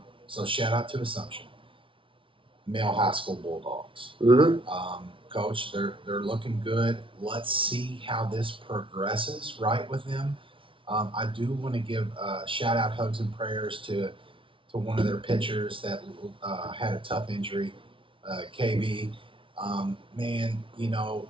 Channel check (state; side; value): late; left; 0.25 ms